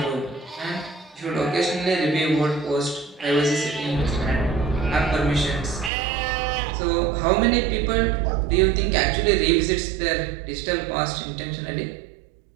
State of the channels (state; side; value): drops out; left; at 5.9 s